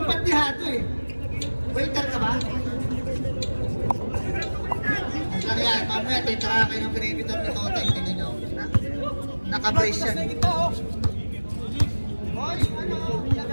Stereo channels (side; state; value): both; inverted; correlation -1.00